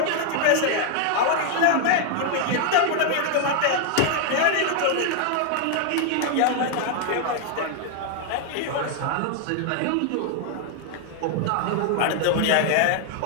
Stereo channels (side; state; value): both; different; correlation 0.00